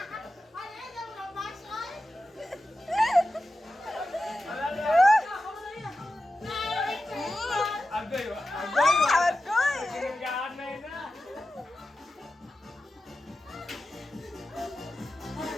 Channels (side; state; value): both; normal; correlation 0.93